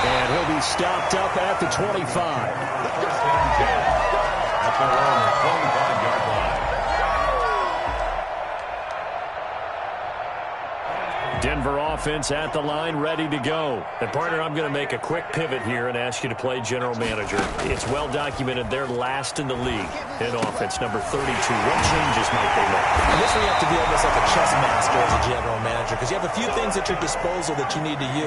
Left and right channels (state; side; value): identical; both; correlation 1.00